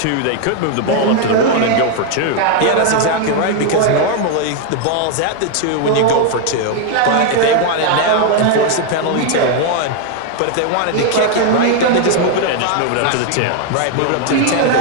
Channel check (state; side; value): different; both; correlation 0.00